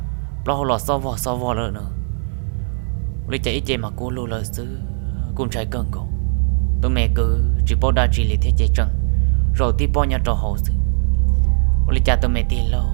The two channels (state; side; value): silent; left; 59 dB below the other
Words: lo lò so vò nữa lấy chạy chạy mà cô lô lời sư cùng trái cơn cổ tụi mẹ cứ chỉ bao đa chỉ lấy thế chạy trăng rồi tí bao nhà trò hậu sư lấy cha tụi mẹ tí lâu